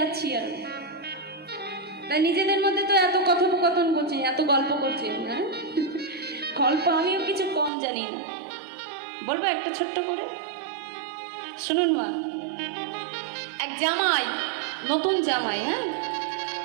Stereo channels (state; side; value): drops out; left; at 7.7 s